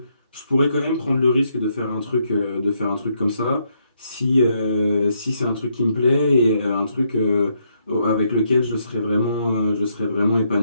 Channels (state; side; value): inverted; both; correlation -0.76